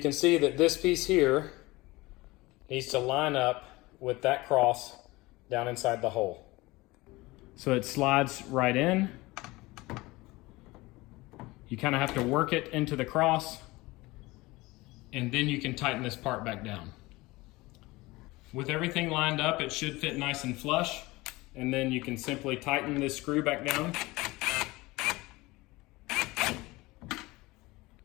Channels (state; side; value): quieter; right; 21.3 dB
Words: can see that this piece here needs to line up with that cross down inside the hole. So it slides right in. You kind of have to work it into the cross, and then you can tighten this part back down. With everything lined up, it should fit nice and flush, and then you can simply tighten this screw back down.